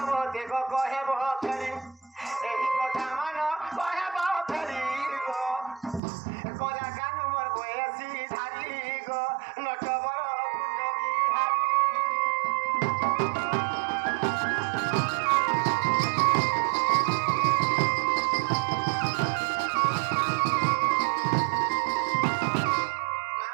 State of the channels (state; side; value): drops out; left; at 6.0 s